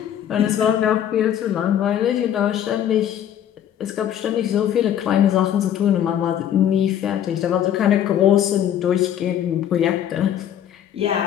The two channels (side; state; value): right; quieter; 10.2 dB